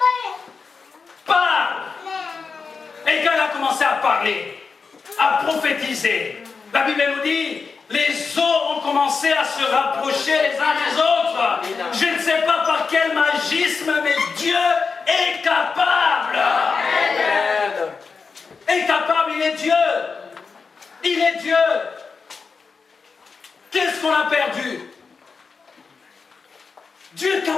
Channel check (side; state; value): right; quieter; 5.0 dB